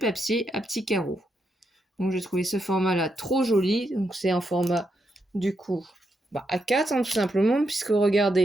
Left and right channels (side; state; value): both; normal; correlation 0.82